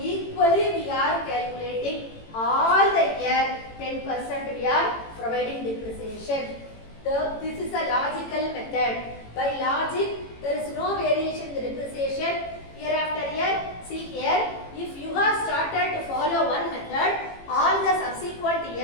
equally we are calculating all the year 10% we are providing depreciation. This is a logical method. By logic there is no variation in the depreciation year after year. See here, if you have started to follow one method, all the subsequent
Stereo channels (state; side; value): late; right; 18 ms